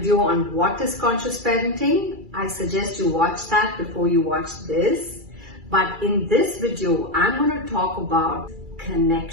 on what is conscious parenting, I suggest you watch that before you watch this. But in this video, I'm going to talk about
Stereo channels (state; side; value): late; left; 2.3 ms